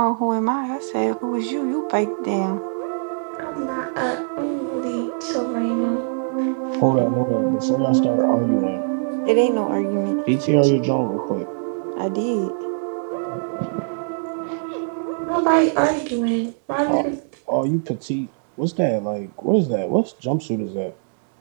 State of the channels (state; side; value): silent; left; digital silence